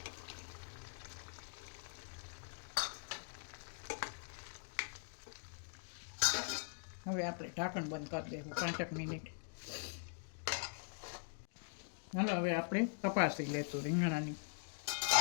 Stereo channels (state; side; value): silent; right; digital silence